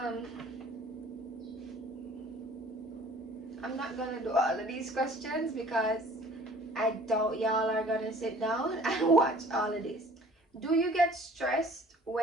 I'm not gonna do all of these questions because I doubt y'all are gonna sit down and watch all of this. Do you get stressed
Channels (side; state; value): both; normal; correlation 0.50